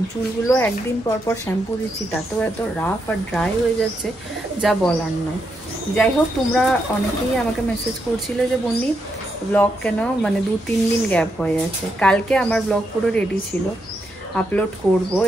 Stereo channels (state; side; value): normal; both; correlation 0.81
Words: চুলগুলো একদিন পর পর শ্যাম্পু দিচ্ছি, তাতেও এত রাফ আর ড্রাই হয়ে যাচ্ছে যা বলার নয়। যাই হোক, তোমরা অনেকেই আমাকে মেসেজ করছিলে যে বন্নি ব্লগ কেন মানে 2-3 দিন গ্যাপ হয়ে যাচ্ছে। কালকে আমার ব্লগ পুরো রেডি ছিল, আপলোড করব